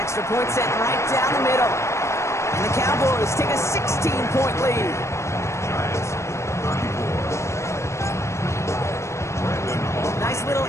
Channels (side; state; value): right; late; 0.14 ms